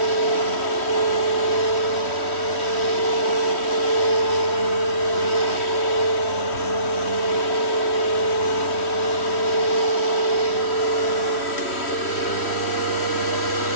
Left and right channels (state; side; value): late; right; 3.1 ms